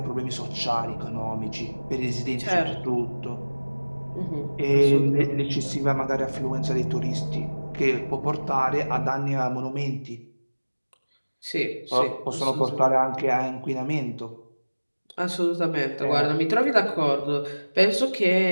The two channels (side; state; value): both; inverted; correlation -1.00